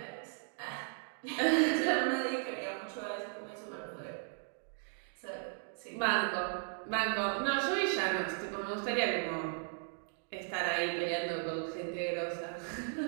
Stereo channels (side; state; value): left; silent; 54 dB below the other